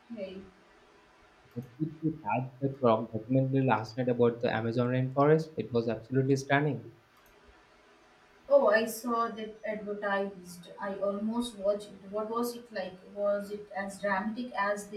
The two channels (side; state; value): both; identical; correlation 1.00